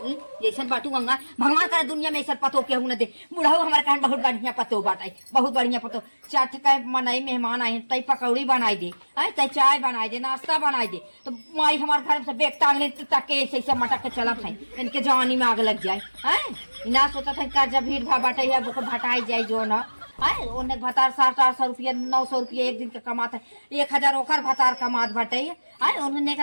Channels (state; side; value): inverted; both; correlation -1.00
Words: जैसे बाटू गंगा भगवान करे दुनिया में ऐसा पतो के न दे बुढ़ाऊ हमारे कहन बहुत बढ़िया पतो बाटाई बहुत बढ़िया पतो चाट का मनाई मेहमान आए तई पकौड़ी बनाई दे आई तई चाय बनाई दे नाश्ता बनाई दे तो माई हमारे घर से बेग टांग ले तक के ऐसे मटक के चला खाई इनके जवानी में आग लग जाए हैं ना सोचा था का जब भीड़ भाड़ बाटे है वो भटाई जाए जो ना है ओने भतार 700-800 रुपया 900 रुपया एक दिन के कमाता है 1000 ओकर भतार कमात बाटे है उन्होंने